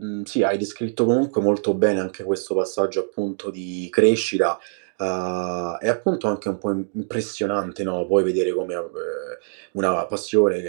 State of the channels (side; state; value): left; silent; digital silence